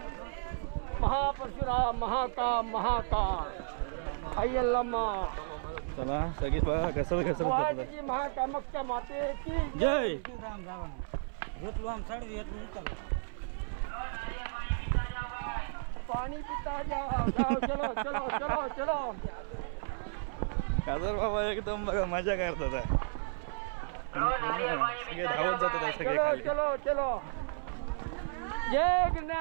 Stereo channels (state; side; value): silent; left; 56 dB below the other